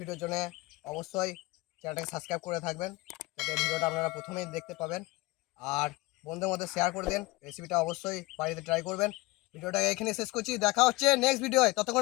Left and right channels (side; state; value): right; quieter; 21.5 dB